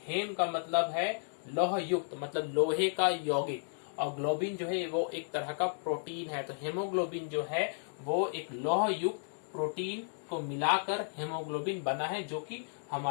हेम का मतलब है लौह युक्त, मतलब लोहे का यौगिक, और ग्लोबिन जो है वो एक तरह का प्रोटीन है। तो हेमोग्लोबिन जो है वो एक लौह युक्त प्रोटीन को मिलाकर हेमोग्लोबिन बना है, जो कि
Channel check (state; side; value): silent; right; digital silence